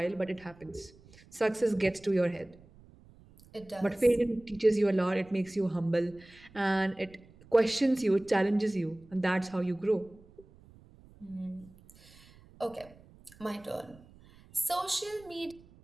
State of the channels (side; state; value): right; noise; rumble, 25 dB below the sound